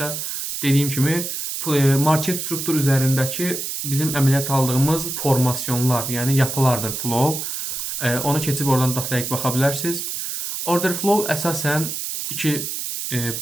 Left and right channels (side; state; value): right; noise; hiss, 4 dB below the sound